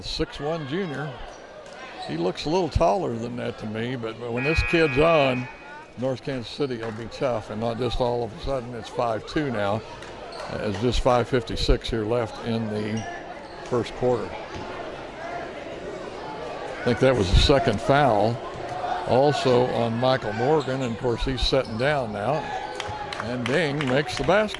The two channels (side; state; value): both; identical; correlation 1.00